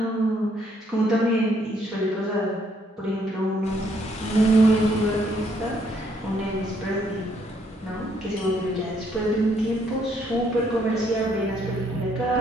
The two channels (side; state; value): both; normal; correlation 0.70